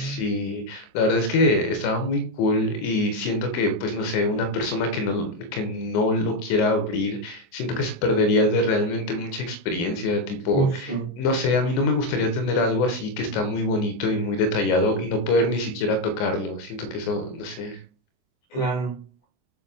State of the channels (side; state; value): right; late; 24 ms